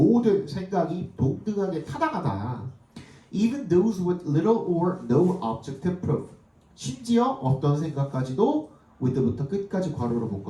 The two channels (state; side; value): identical; both; correlation 1.00